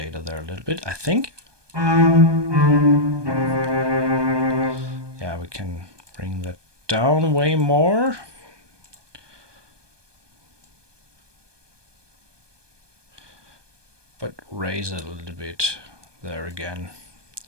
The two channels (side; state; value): left; late; 1.2 ms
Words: there a little bit, I think. Yeah, we can bring that down way more. But raise it a little bit there again.